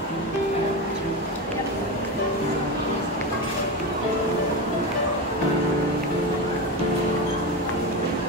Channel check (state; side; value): normal; both; correlation 0.19